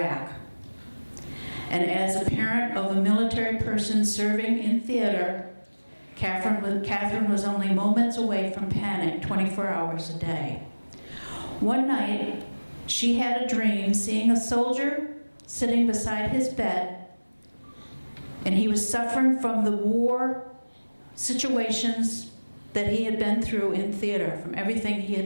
and as a parent of a military person serving in theater, Catherine was only moments away from panic 24 hours a day. One night, she had a dream seeing a soldier sitting beside his bed, and he was suffering from the war situations that he had been through in theater, from everything he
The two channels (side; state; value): both; inverted; correlation -1.00